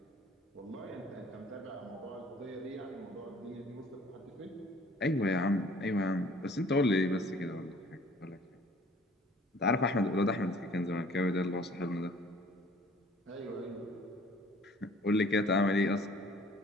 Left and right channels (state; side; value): normal; both; correlation 0.53